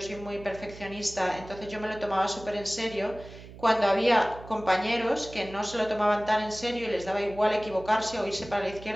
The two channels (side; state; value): right; noise; hum, 16 dB below the sound